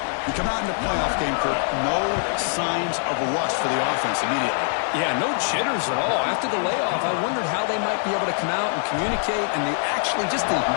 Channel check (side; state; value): right; silent; 63 dB below the other